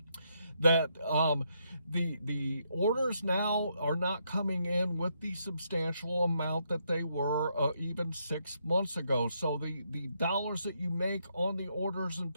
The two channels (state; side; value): inverted; both; correlation -0.76